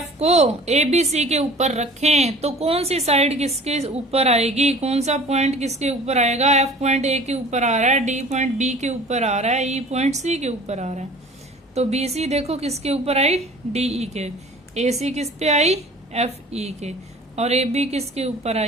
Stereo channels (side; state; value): both; normal; correlation 0.46